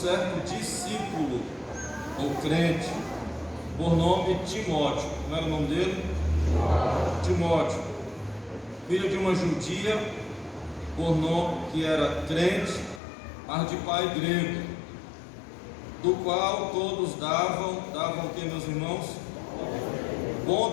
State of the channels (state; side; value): drops out; right; at 13.0 s